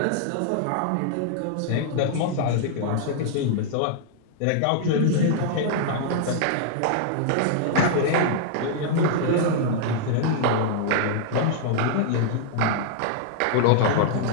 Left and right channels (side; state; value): both; different; correlation -0.01